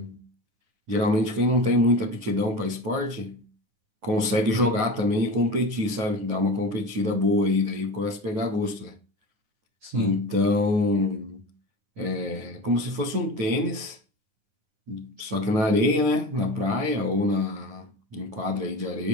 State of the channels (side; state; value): left; late; 9.3 ms